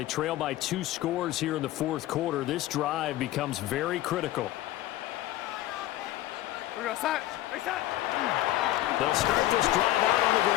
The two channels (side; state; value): right; quieter; 15.0 dB